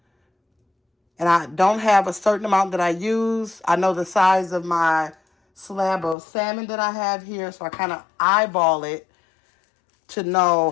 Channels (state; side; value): drops out; right; at 6.2 s